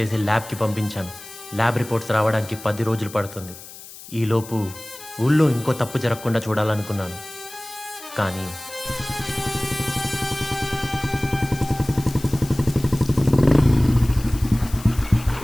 ల్యాబ్కి పంపించాను. ల్యాబ్ రిపోర్ట్స్ రావడానికి 10 రోజులు పడుతుంది. ఈలోపు ఊళ్ళో ఇంకో తప్పు జరగకుండా చూడాలనుకున్నాను. కానీ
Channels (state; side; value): noise; left; hiss, 16 dB below the sound